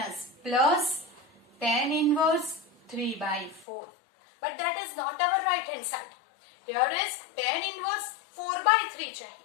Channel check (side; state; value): right; drops out; at 3.7 s